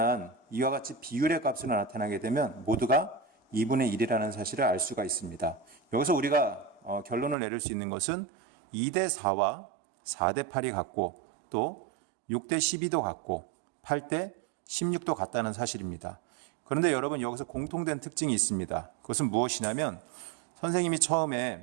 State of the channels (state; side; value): drops out; left; at 7.4 s